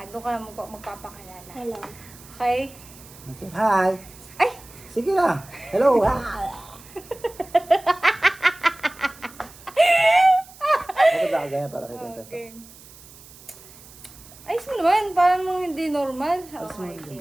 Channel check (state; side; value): noise; right; hiss, 21 dB below the sound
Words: doon ka lang magpapakilala. Hello. Okay? Okay. Hi. Ay! Sige na. Hello. Hi. Bakit ba ganyan para kita ito? Okay. Ayos mo naman. Parang mga hindi normal. Alas mo Okay, yung